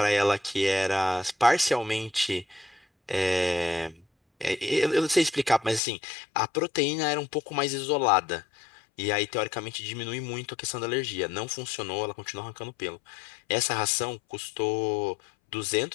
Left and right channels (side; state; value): right; drops out; at 5.8 s